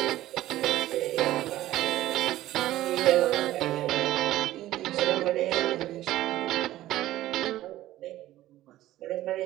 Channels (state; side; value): quieter; left; 14.8 dB